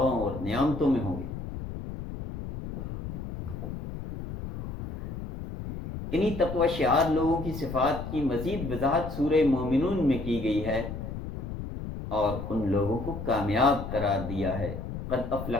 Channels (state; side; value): noise; left; rumble, 7 dB below the sound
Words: اور نعمتوں میں ہوں گے۔ انہی تقوی شعار لوگوں کی صفات کی مزید وضاحت سورہ مومنون میں کی گئی ہے اور ان لوگوں کو کامیاب قرار دیا ہے۔ قد